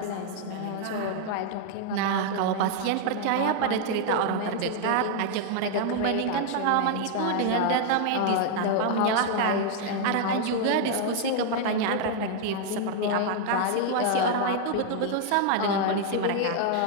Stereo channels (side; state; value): both; different; correlation 0.00